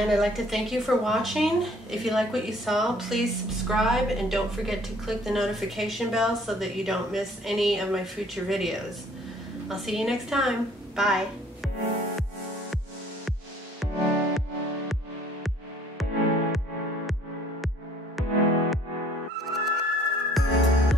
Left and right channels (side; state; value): both; normal; correlation 0.57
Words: I'd like to thank you for watching. If you like what you saw, please subscribe, and don't forget to click the notification bell so that you don't miss any of my future videos. I'll see you next time. Bye.